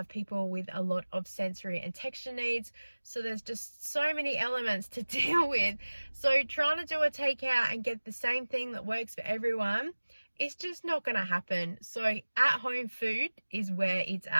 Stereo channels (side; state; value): both; inverted; correlation -1.00